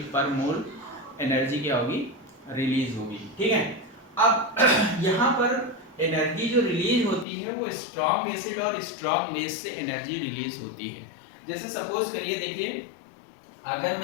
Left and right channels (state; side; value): drops out; right; at 7.2 s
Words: पर मोल एनर्जी क्या होगी, रिलीज होगी। ठीक है, अब यहाँ पर एनर्जी जो रिलीज होती है वो स्ट्रॉन्ग एसिड और स्ट्रॉन्ग बेस से एनर्जी रिलीज होती है। जैसे सपोज करिए देखिए अगर